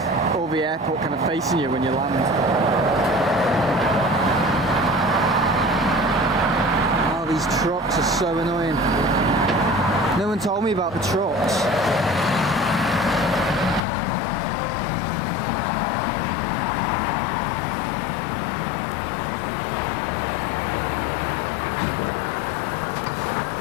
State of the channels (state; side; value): drops out; right; at 13.8 s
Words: all the airport kind of facing you when you land. Oh, these trucks are so annoying. No one told me about the trucks.